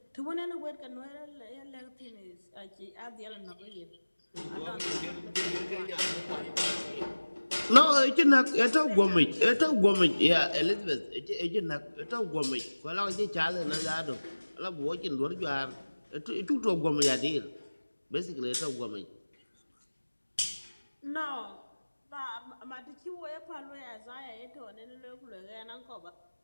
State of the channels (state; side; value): inverted; both; correlation -1.00